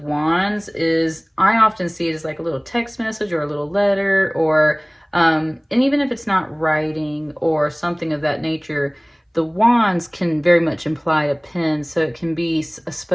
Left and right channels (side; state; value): both; identical; correlation 1.00